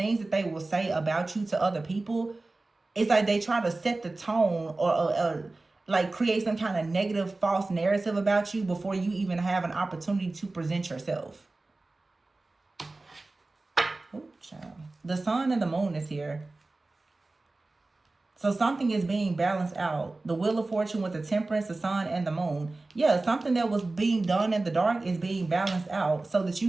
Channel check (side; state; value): left; quieter; 3.2 dB